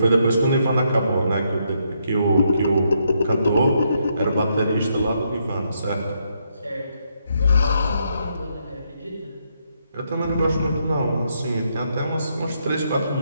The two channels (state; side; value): inverted; both; correlation -0.76